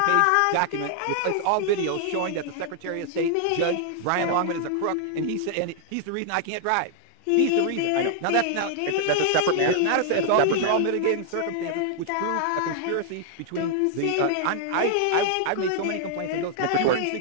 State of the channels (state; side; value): different; both; correlation -0.01